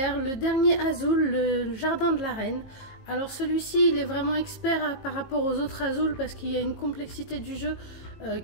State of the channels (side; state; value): right; late; 19 ms